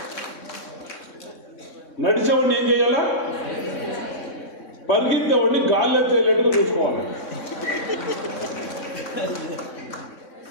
నడిచేవాడిని ఏం చేయాలా? పరిగెత్తేవాడిని గాల్లో తేలేట్టుగా చూసుకోవాలి.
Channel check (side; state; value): right; late; 3.6 ms